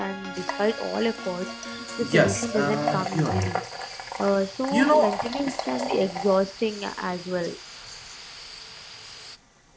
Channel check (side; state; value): both; identical; correlation 1.00